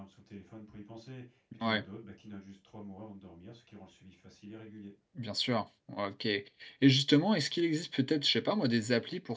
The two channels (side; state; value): both; identical; correlation 1.00